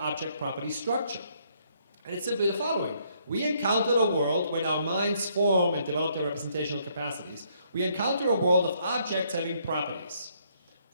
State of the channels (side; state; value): both; inverted; correlation -0.70